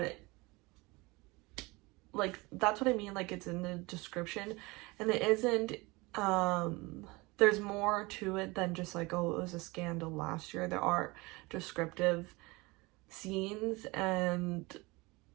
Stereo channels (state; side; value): quieter; left; 24.0 dB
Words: it, like, that's what I mean, like, it's in the description, and it isn't, there's more to it than just like, oh, it was a scandal last year. There are descriptive scenes and